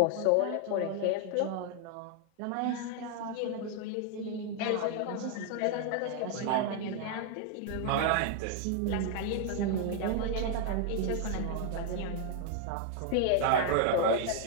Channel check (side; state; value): both; different; correlation 0.00